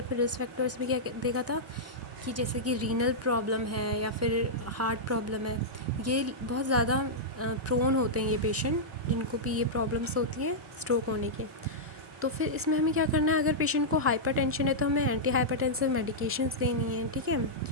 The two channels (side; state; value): both; normal; correlation -0.10